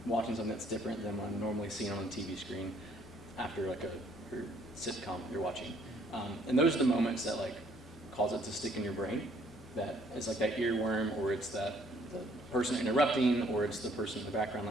watching something that's different than what I'm normally seeing on the TV screen after like a sitcom you're watching. And those are the moments that like cause it to stick in your brain. That is like that earworm, or it's the person interrupting, or it's the person in the background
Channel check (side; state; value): both; normal; correlation 0.63